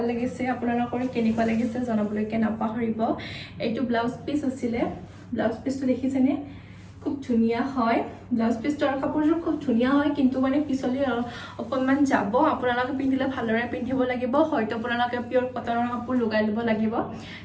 লাগিছে আপোনালোকৰ কেনেকুৱা লাগিছে জনাবলৈকে নাপাহৰিব এইটো ব্লাউজ পিচ আছিলে ব্লাউজ পিচটো দেখিছেনে খুব ধুনীয়া হয় ব্লাউজ পিচটো আৰু কাপোৰযোৰ খুব ধুনীয়া হয় কিন্তু মানে পিছলি অকণমান যাব আপোনালোকে পিন্ধিলে ভালদৰে পিন্ধিব লাগিব হয়তো আপোনালোকে পিয়ৰ কটনৰ কাপোৰ লগাই ল'ব লাগিব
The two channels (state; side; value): identical; both; correlation 1.00